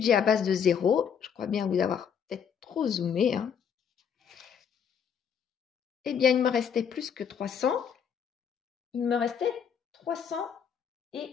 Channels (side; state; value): right; quieter; 7.5 dB